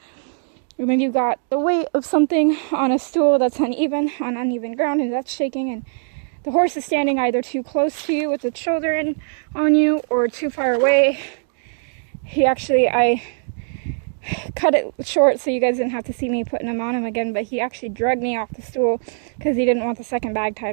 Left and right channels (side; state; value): left; silent; 63 dB below the other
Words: or maybe you've got the weight of something on a stool that's uneven, on uneven ground, and that's shaking, and the horse is standing either too close to you with its shoulder in on you or too far away. I cut it short so you guys didn't have to see me putting him on him again, but he actually dragged me off the stool because he didn't want the second bag tied